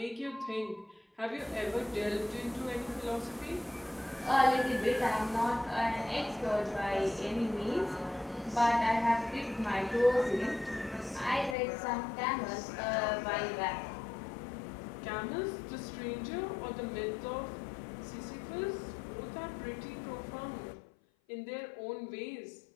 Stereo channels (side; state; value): right; drops out; at 11.6 s